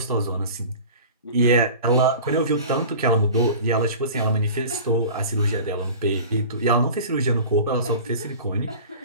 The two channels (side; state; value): both; inverted; correlation -0.38